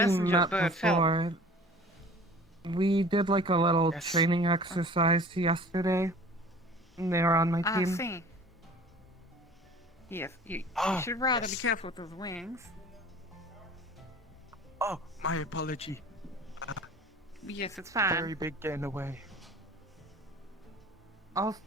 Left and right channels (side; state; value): both; normal; correlation 0.45